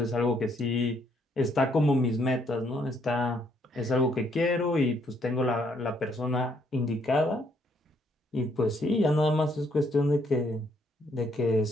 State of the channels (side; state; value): both; normal; correlation 0.69